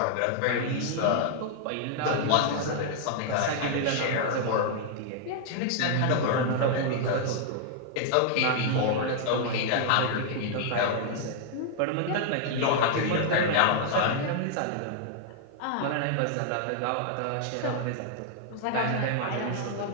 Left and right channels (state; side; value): different; both; correlation 0.00